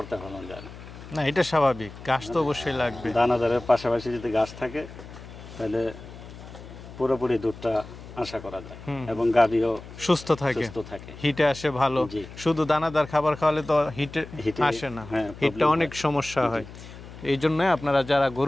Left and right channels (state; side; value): noise; left; hum, 15 dB below the sound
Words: ভালো যায় না। না, এটা স্বাভাবিক, ঘাস তো অবশ্যই লাগবে। দানাদারের পাশাপাশি যদি ঘাস থাকে তাহলে পুরোপুরি দুধটা আশা করা যায় এবং গাভীও সুস্থ থাকে, হিটে আসে ভালো। শুধু দানাদার খাবার খাওয়ালে তো হিটে আসে না, হিটটা অনেক সমস্যা হয়। এই জন্য আপনারা যারা